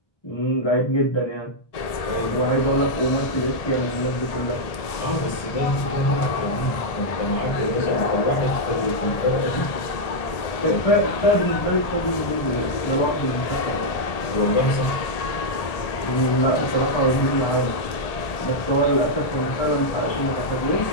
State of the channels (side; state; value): right; late; 1.7 ms